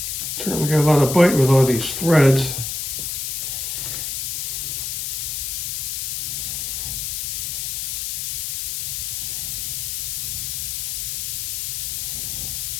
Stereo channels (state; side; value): noise; left; hiss, 2 dB below the sound